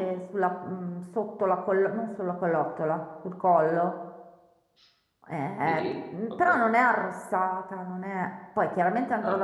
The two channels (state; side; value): identical; both; correlation 1.00